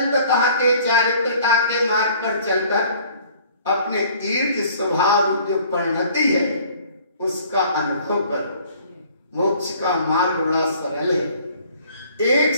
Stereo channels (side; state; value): both; inverted; correlation -0.54